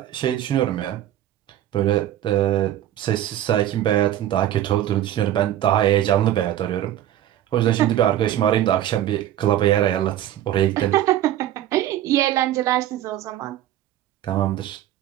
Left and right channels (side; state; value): left; quieter; 12.5 dB